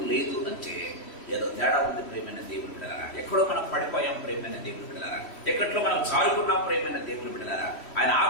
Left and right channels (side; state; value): right; late; 3.1 ms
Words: లేదు అంటే ఏదో తేడా ఉంది. ప్రియమైన దేవుని బిడ్డలారా, ఎక్కడో మనం పడిపోయాం. ప్రియమైన దేవుని బిడ్డలారా, ఎక్కడో మనం జారుకున్నాం. ప్రియమైన దేవుని బిడ్డలారా, ఆయన